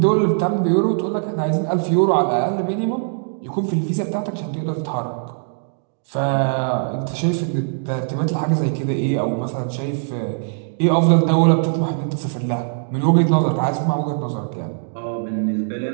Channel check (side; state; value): left; silent; digital silence